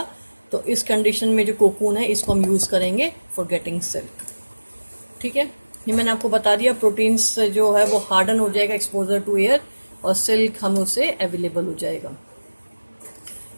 तो इस कंडीशन में जो कोकून है इसको हम यूज करेंगे फॉर गेटिंग सिल्क. ठीक है, ये मैंने आपको बता दिया. प्रोटीन्स जो है वो हार्डन हो जाएगा एक्सपोजर टू एयर, और सिल्क हम उसे अवेलेबल हो जाएगा.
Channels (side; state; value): both; inverted; correlation -1.00